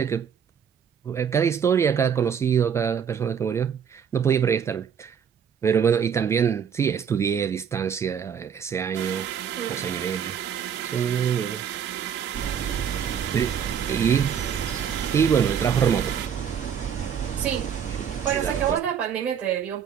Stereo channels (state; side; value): quieter; left; 7.8 dB